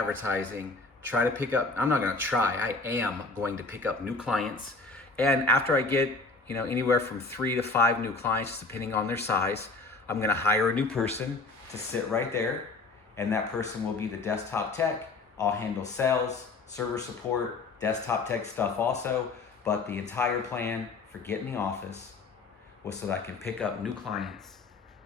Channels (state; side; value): quieter; right; 3.7 dB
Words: try to pick up, I'm not gonna try, I am going to pick up new clients. And after I get, you know, anywhere from 3 to 5 new clients, depending on their size, I'm gonna hire a new person to sit right there. And that person will be the desktop tech. I'll handle sales, server support, desktop tech stuff also. But the entire plan for getting the office was so that I can pick up new clients